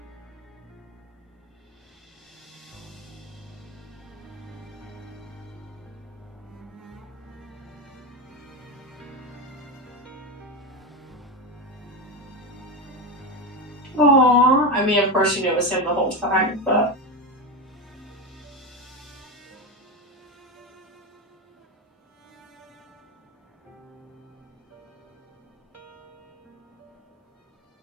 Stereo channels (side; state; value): both; normal; correlation 0.15